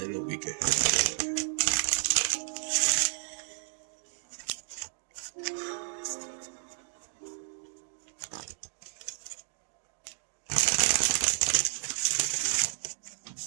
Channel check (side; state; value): left; silent; digital silence